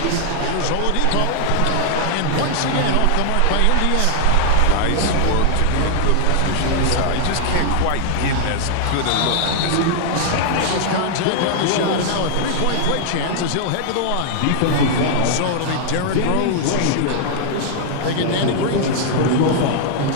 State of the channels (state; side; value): different; both; correlation -0.01